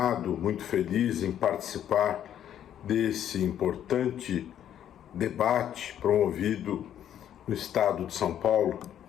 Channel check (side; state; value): right; quieter; 10.3 dB